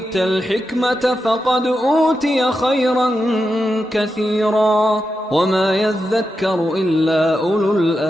الحكمة فقد أوتي خيرا كثيرا وما يذكر إلا أولو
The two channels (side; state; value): both; normal; correlation 0.88